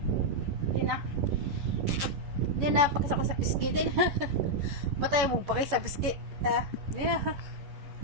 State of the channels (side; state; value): left; late; 11 ms